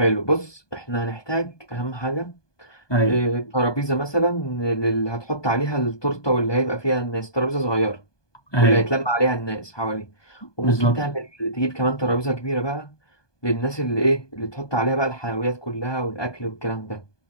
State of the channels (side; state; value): right; late; 1.2 ms